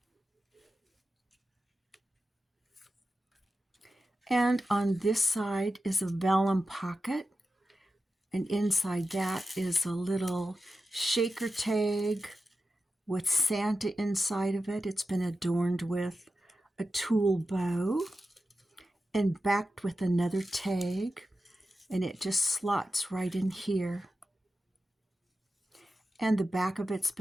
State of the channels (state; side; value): normal; both; correlation 0.92